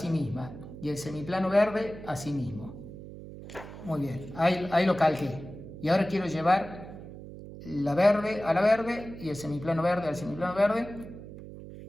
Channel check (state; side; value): noise; right; hum, 13 dB below the sound